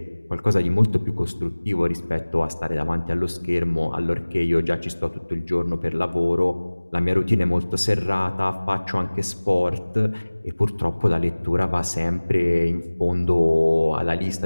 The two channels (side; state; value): both; inverted; correlation -1.00